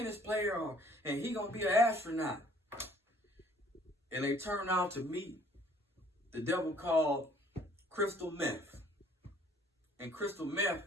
player and he going to be an astronaut. And they turn out to meet the devil called crystal meth. And crystal meth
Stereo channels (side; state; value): both; normal; correlation 0.58